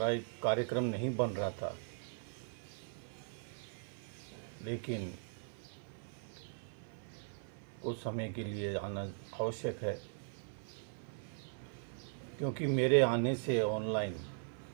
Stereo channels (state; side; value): silent; left; 51 dB below the other